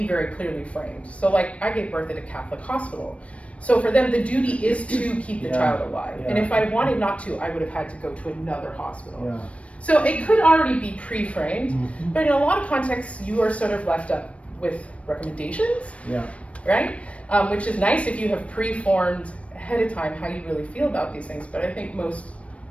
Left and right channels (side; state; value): right; late; 0.063 ms